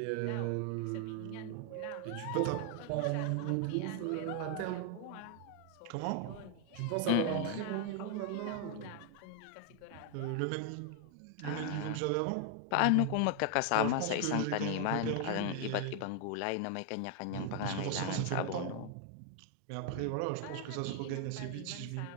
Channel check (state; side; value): different; both; correlation 0.00